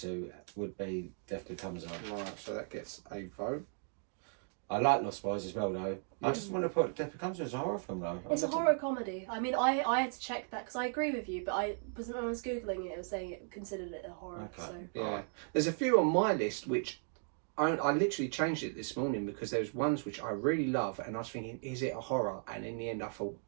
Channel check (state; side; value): silent; left; 54 dB below the other